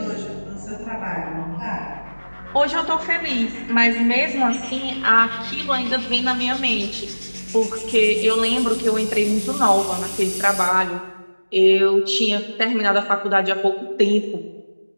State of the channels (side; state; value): both; inverted; correlation -1.00